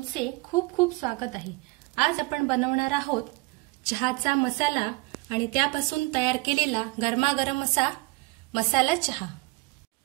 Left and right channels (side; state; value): left; quieter; 24.8 dB